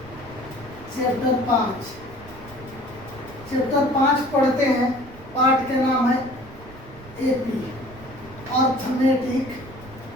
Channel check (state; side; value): noise; right; rumble, 18 dB below the sound